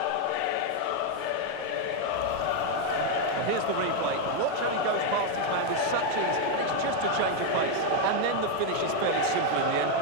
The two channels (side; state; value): both; different; correlation 0.01